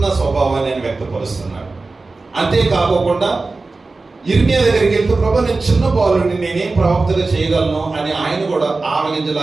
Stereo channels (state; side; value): quieter; left; 3.6 dB